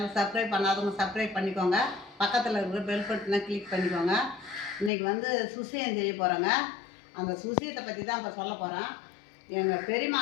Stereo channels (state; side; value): drops out; right; at 4.9 s